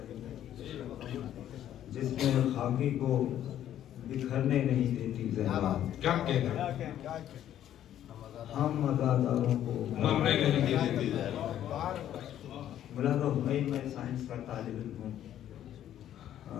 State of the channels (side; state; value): right; quieter; 11.3 dB